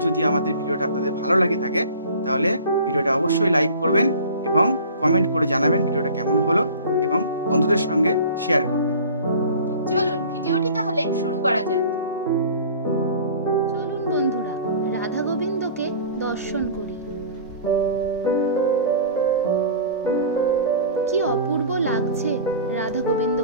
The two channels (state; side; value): inverted; both; correlation -0.43